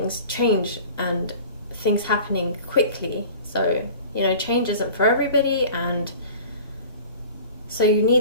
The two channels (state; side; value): inverted; both; correlation -0.43